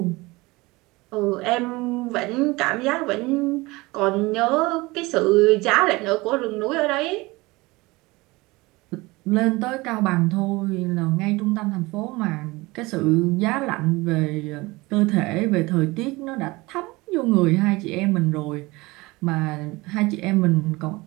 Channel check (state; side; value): quieter; left; 22.3 dB